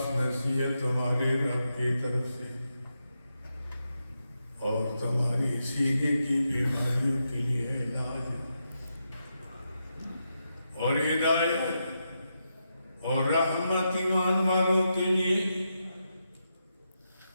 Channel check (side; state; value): both; inverted; correlation -0.85